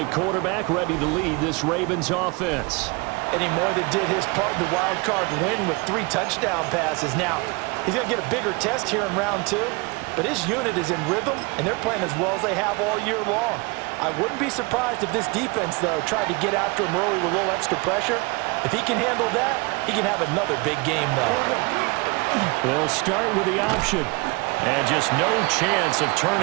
quarterback, ready to lead this Ravens offense. And he more than did his part in the wild card win with 3 touchdown passes. Now, he's going to get a bigger test here in round 2. But his unit is in rhythm, and they're playing as well as they have all year long. I wouldn't be surprised if this defense, though, tried to get after him early with a little extra pressure. If he can handle that, he can have another big game, though. They'll start with the option. And just no chance of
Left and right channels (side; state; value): left; quieter; 27.5 dB